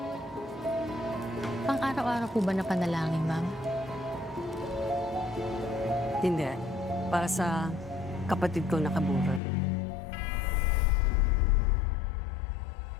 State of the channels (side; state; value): right; drops out; at 9.4 s